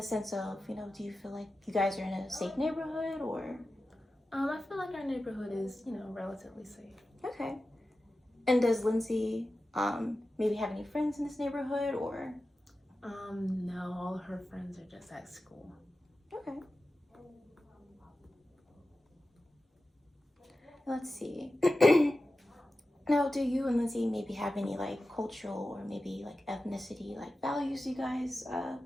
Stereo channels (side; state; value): both; normal; correlation 0.93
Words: sense of, you know, do you feel like you guys are in a safe neighborhood or? I feel like our neighborhood is, you know, relatively safe. Okay. And does Lindsay maybe have any friends in this neighborhood or? No, all her friends are just at school. Okay. Let's see. Now, do you and Lindsay maybe have any like cultural or maybe like ethnicity like values you guys